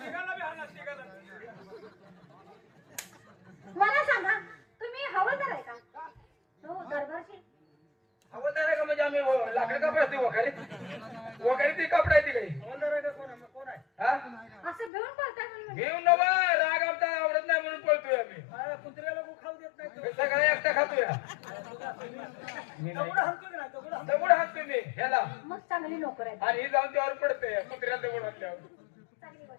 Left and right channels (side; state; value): right; drops out; at 14.9 s